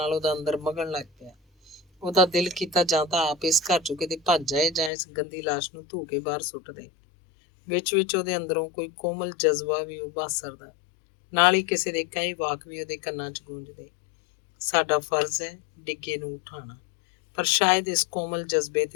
ਉਹਦਾ ਅੰਦਰ ਮਗਣ ਲੱਗ ਪਿਆ। ਉਹਦਾ ਦਿਲ ਕੀਤਾ ਜਾਂ ਤਾਂ ਆਪ ਇਸ ਘਰ 'ਚੋਂ ਕਿਤੇ ਭੱਜ ਜਾਏ ਜਾਂ ਇਸ ਗੰਦੀ ਲਾਸ਼ ਨੂੰ ਧੂ ਕੇ ਬਾਹਰ ਸੁੱਟ ਦੇ। ਵਿੱਚ ਉਹਦੇ ਅੰਦਰੋਂ ਕੋਈ ਕੋਮਲ ਜਜ਼ਬਾ ਵੀ ਉਭਾਸਰਦਾ, ਨਾਲ ਹੀ ਕਿਸੇ ਦੇ ਕਈ ਵਾਕ ਵੀ ਉਹਦੇ ਕੰਨਾਂ 'ਚ ਗੂੰਜਦੇ। ਸਾਡਾ ਫਰਜ਼ ਹੈ ਡਿੱਗੇ ਨੂੰ ਉਠਾਉਣਾ। ਪਰ ਸ਼ਾਇਦ ਇਸ ਕੋਮਲ ਜਜ਼ਬੇ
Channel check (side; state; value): right; drops out; at 4.9 s